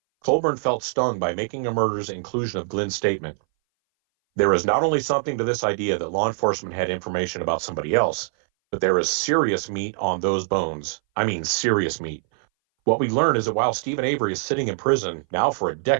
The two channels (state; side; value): silent; left; 60 dB below the other